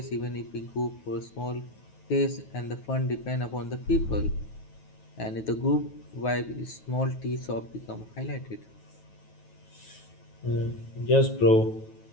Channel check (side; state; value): right; late; 9.3 ms